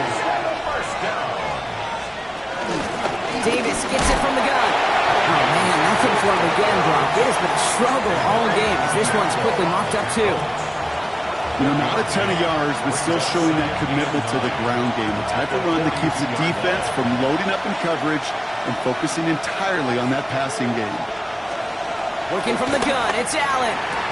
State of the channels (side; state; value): both; identical; correlation 1.00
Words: first down. Davis gets it from the gun. Oh, man, nothing for him again, Brock. It has been a struggle all game as this one's quickly mopped up, too. You know, not a ton of yards, but still showing that commitment to the ground game. The type of run that keeps the defense from loading up in coverage and focusing entirely on that passing game. Working from the gun, it's Allen.